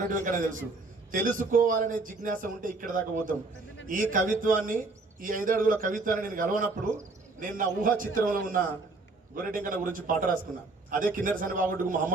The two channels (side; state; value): left; quieter; 3.5 dB